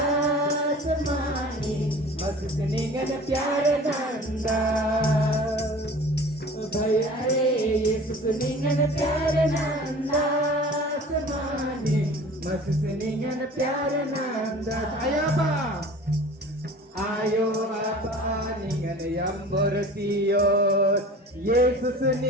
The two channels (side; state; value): both; normal; correlation 0.42